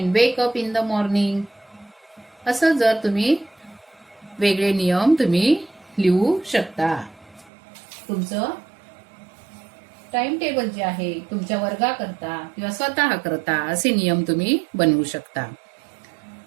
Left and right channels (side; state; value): left; drops out; at 7.5 s